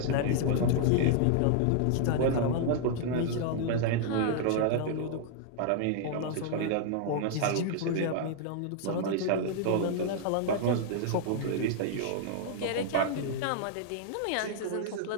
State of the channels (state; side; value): different; both; correlation 0.00